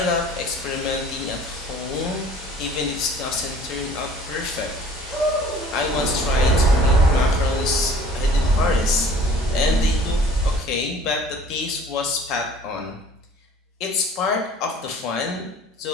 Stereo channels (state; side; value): normal; both; correlation 0.50